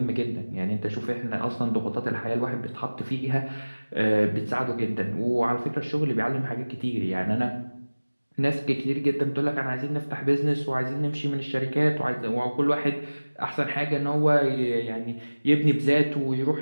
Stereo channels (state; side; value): inverted; both; correlation -1.00